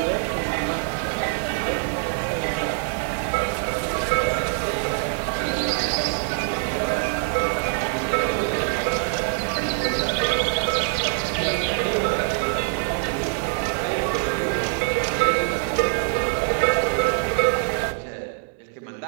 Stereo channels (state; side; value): silent; left; digital silence